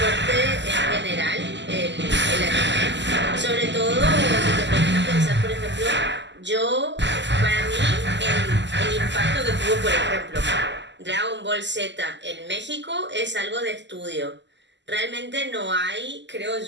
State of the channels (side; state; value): left; late; 0.52 ms